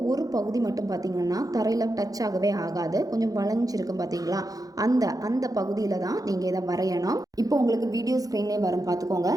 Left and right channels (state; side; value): late; left; 0.17 ms